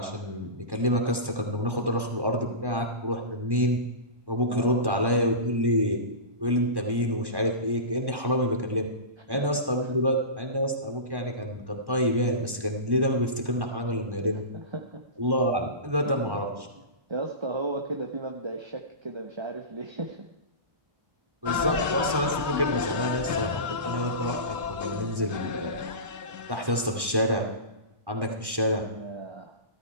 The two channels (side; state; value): left; late; 1.1 ms